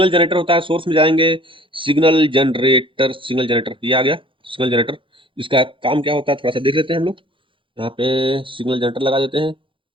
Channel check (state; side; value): late; left; 0.25 ms